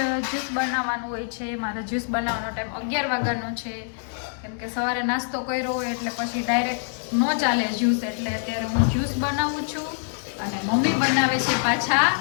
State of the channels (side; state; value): right; silent; digital silence